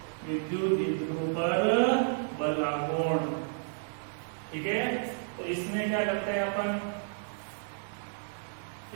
विद्युत द्विध्रुव पर बल आघूर्ण, ठीक है। तो इसमें क्या करते हैं अपन,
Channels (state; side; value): silent; left; digital silence